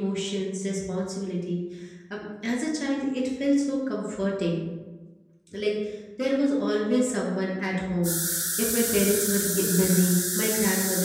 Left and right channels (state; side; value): identical; both; correlation 1.00